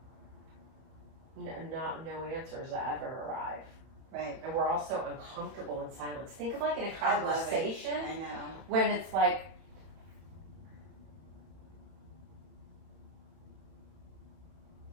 no answers ever arrive. Right. And we're all so uncomfortable in silence. Think of like in a I love it. conversation I know. when it's like,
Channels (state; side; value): late; left; 31 ms